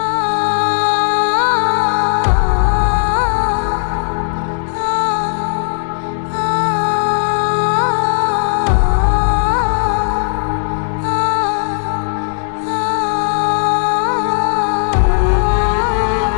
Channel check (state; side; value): silent; right; digital silence